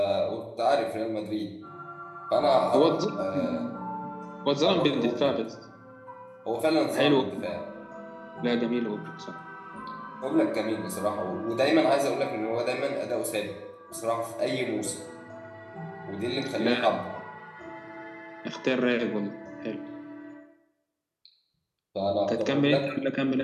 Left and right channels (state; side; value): identical; both; correlation 1.00